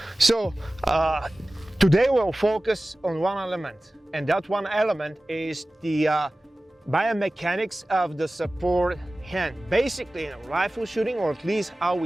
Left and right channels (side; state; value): both; normal; correlation 0.97